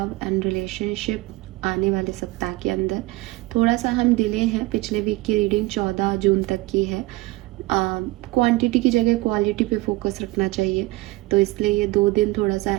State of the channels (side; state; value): left; quieter; 20.2 dB